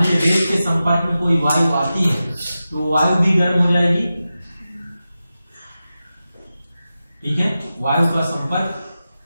लीजिए रेत के संपर्क में कोई वायु आती है तो वायु भी गर्म हो जाएगी। ठीक है, वायु का संपर्क,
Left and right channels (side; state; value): both; inverted; correlation -0.93